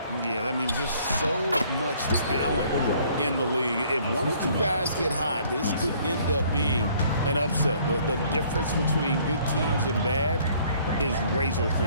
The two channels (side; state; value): both; inverted; correlation -0.59